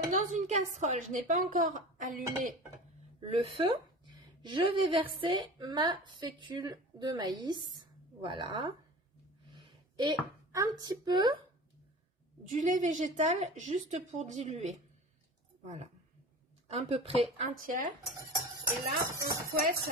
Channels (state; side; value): normal; both; correlation 0.35